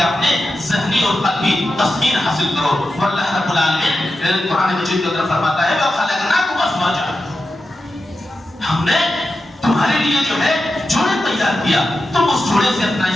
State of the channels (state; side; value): normal; both; correlation 0.90